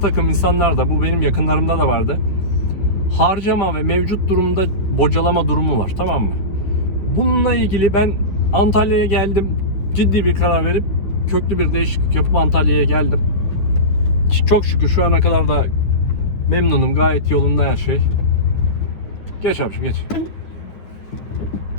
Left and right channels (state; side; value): late; right; 10 ms